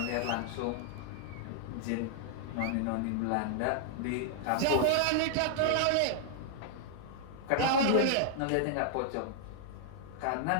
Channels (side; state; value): both; different; correlation -0.01